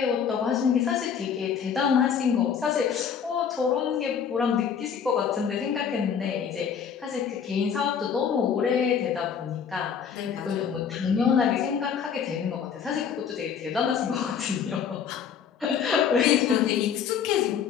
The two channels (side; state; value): right; quieter; 7.4 dB